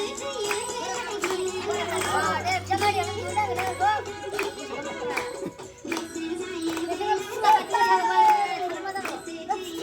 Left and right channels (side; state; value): both; identical; correlation 1.00